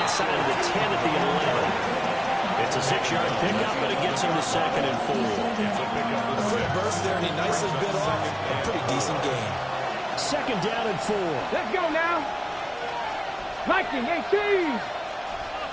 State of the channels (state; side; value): identical; both; correlation 1.00